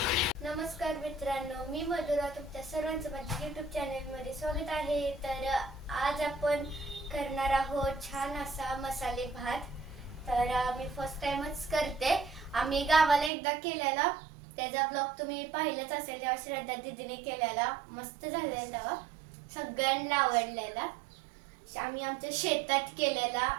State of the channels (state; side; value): drops out; left; at 13.3 s